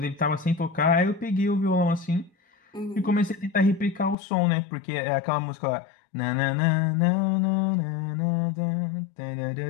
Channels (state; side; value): drops out; right; at 4.2 s